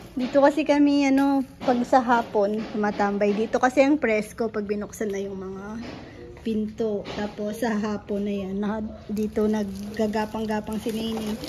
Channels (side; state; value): both; identical; correlation 1.00